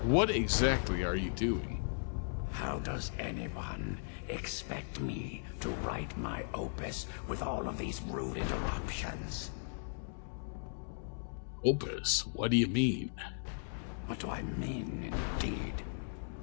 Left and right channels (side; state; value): right; silent; digital silence